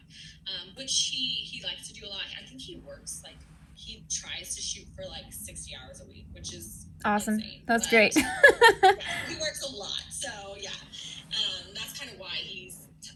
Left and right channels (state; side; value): identical; both; correlation 1.00